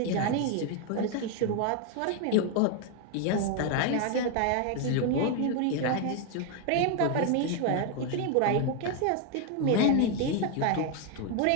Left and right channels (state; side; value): different; both; correlation 0.01